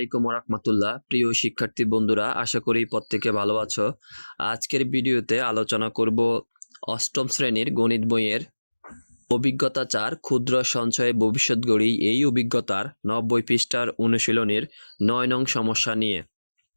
রাহমাতুল্লাহ। প্রিয় শিক্ষার্থী বন্ধুরা, আশা করি প্রত্যেকে ভালো আছো। আজকের ভিডিওতে আলোচনা করব অষ্টম শ্রেণীর গণিত বইয়ের অভিজ্ঞতা 4 ক্ষুদ্র সঞ্চয়ে ভবিষ্যৎ গড়ি, এই অভিজ্ঞতার 90 পৃষ্ঠার অনুশীলনীর 9 নং সমস্যা নিয়ে।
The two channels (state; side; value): inverted; both; correlation -1.00